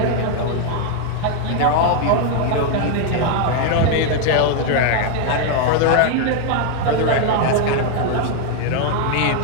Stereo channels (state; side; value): different; both; correlation 0.00